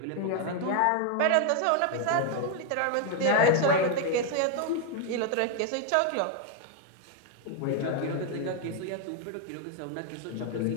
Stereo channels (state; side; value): different; both; correlation 0.01